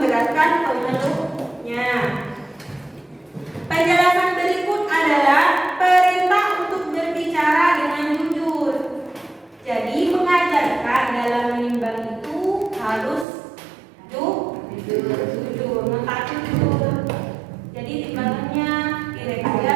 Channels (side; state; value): left; drops out; at 13.2 s